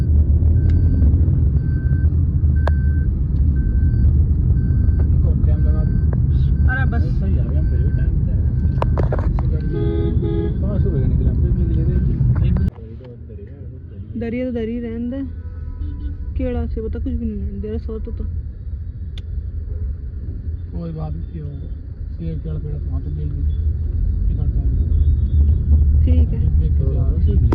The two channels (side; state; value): both; identical; correlation 1.00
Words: अरे बस सही आ गया, फिर भी टाइम दरिया तो दरी रहन दे, केड़ा से बता कुछ भी नहीं दे रहा सो तो कोई बात नहीं होगा, सेब पेड़ पेड़ वहाँ तो मिल ठीक है।